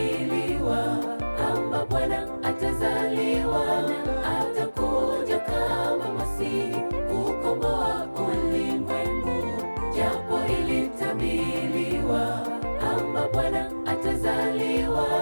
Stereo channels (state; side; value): inverted; both; correlation -1.00